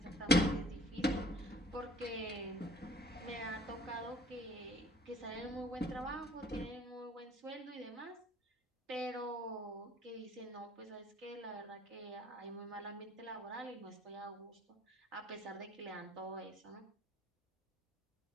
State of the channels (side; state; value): both; normal; correlation 0.55